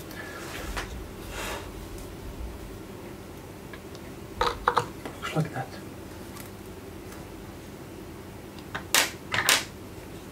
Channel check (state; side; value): identical; both; correlation 1.00